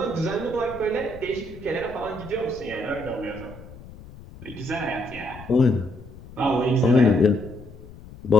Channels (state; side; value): noise; left; rumble, 17 dB below the sound